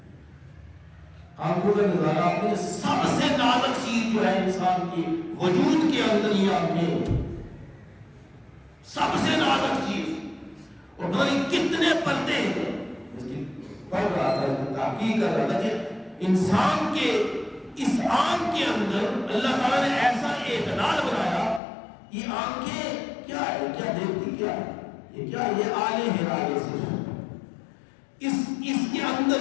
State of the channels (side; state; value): right; drops out; at 21.6 s